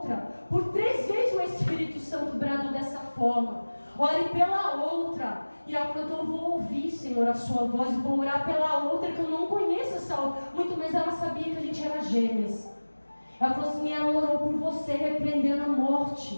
Por 3 vezes o Espírito Santo bradou dessa forma, ore pela outra. E ela falou, então eu vou ouvir, Senhor, a sua voz, e vou orar pela outra, que eu não conheço essa outra. Muito menos ela sabia que a gente era gêmeas. Ela falou assim, ela orou por você, repreendendo a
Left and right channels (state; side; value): inverted; both; correlation -1.00